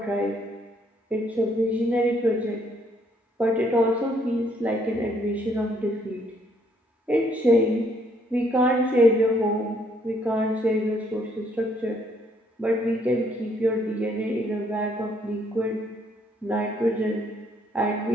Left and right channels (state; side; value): normal; both; correlation 0.68